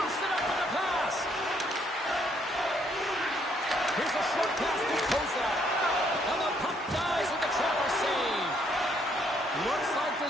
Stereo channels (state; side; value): normal; both; correlation 0.69